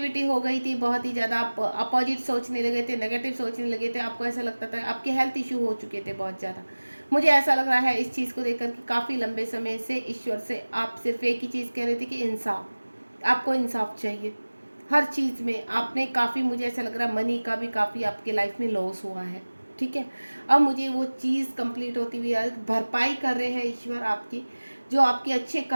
हो गई थी, बहुत ही ज़्यादा आप अपोजिट सोचने लगे थे, नेगेटिव सोचने लगे थे, आपको ऐसा लगता था आपके हेल्थ इशू हो चुके थे बहुत ज़्यादा। मुझे ऐसा लग रहा है इस चीज़ को देखकर कि काफ़ी लंबे समय से ईश्वर से आप सिर्फ एक ही चीज़ कह रहे थे कि इंसाफ, आपको इंसाफ चाहिए हर चीज़ में। आपने काफ़ी, मुझे ऐसा लग रहा है मनी का भी काफ़ी आपके लाइफ में लॉस हुआ है, ठीक है। अब मुझे वो चीज़ कंप्लीट होती हुई भरपाई कर रहे हैं ईश्वर आपकी, जो आपके अच्छे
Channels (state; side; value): inverted; both; correlation -1.00